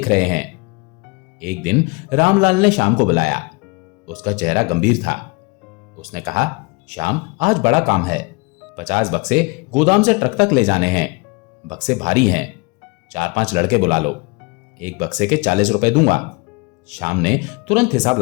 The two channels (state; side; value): quieter; right; 28.0 dB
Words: रहे हैं। एक दिन रामलाल ने श्याम को बुलाया। उसका चेहरा गंभीर था। उसने कहा, श्याम, आज बड़ा काम है। 50 बक्से गोदाम से ट्रक तक ले जाने हैं। बक्से भारी हैं। 4-5 लड़के बुला लो। एक बक्से के 40 रुपए दूंगा। श्याम ने तुरंत हिसाब